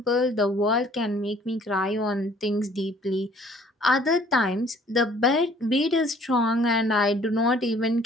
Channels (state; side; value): normal; both; correlation 0.57